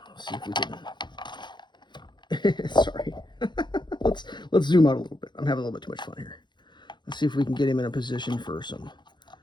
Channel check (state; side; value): late; right; 0.22 ms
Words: Let's see if we can sorry. let's zoom out a little bit. I'm having a little bit too much fun here. Let's see if we can get him in a position for some